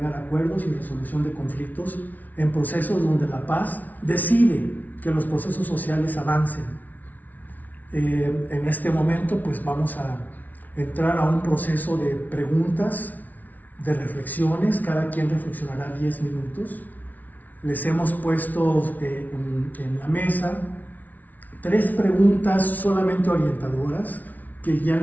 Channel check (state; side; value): late; right; 0.077 ms